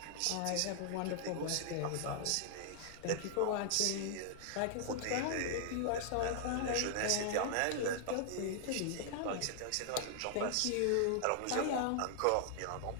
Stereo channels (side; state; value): both; different; correlation 0.00